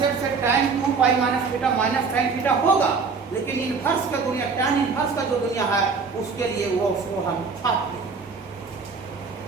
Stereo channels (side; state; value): left; quieter; 4.9 dB